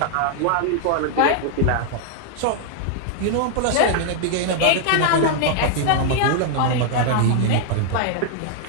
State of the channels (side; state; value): both; different; correlation 0.00